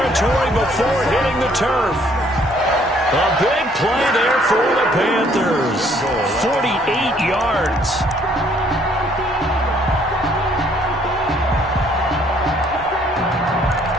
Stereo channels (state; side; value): normal; both; correlation 0.63